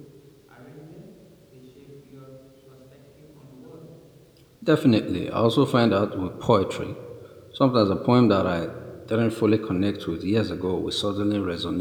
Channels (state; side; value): identical; both; correlation 1.00